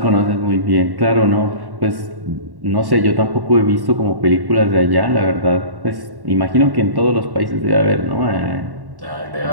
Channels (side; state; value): left; late; 1.1 ms